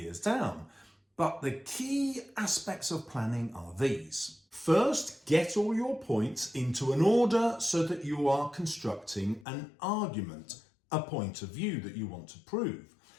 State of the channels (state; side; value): drops out; right; at 9.5 s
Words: down, but the key aspects of planning are these. First, get all your points into an order so that you are constructing an argument, a point of view that you want to prove.